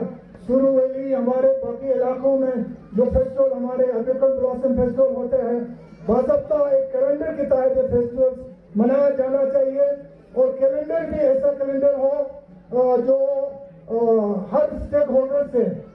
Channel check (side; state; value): both; identical; correlation 1.00